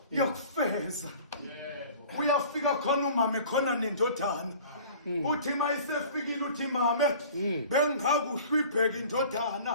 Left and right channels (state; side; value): inverted; both; correlation -0.45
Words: yokufeza uyafika khona umama khona nendodana uthi mayisefikile uthi mama bengakuhle ibheke